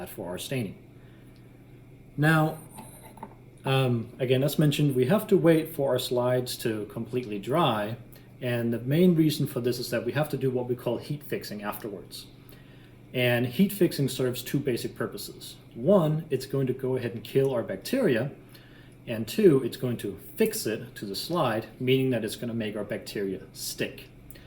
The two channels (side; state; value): both; identical; correlation 1.00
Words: for our staining. Now, again, as mentioned, we have to wait for our slides to completely dry. And the main reason for this is that we have to do what we call heat fixing afterwards. And heat fixing serves two basic purposes. One, it's going to go ahead and kill our bacteria. And two, it's going to fix it to the slide, meaning that it's going to make our bacteria stick.